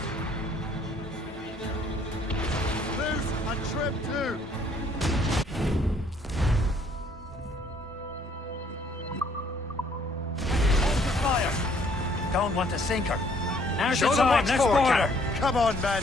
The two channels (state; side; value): normal; both; correlation 0.63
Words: Loose on trip 2! Hold the fire. Don't want to sink her. Now's Show the them time, what's let's for, board Cap. her. Come on,